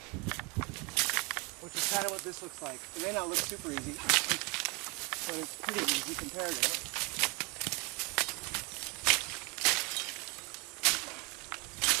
which is kind of what this looks like. It may not look super easy, but it's pretty easy compared to it.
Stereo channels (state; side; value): quieter; left; 29.8 dB